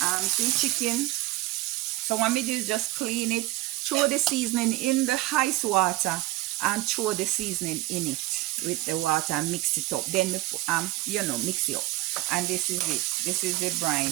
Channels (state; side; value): quieter; left; 18.3 dB